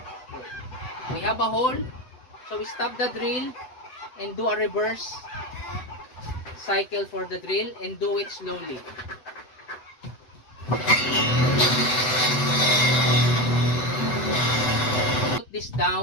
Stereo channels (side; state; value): right; late; 8.0 ms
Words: We have a hole, so we stop the drill and do a reverse cycle for the drill and do it slowly. Put this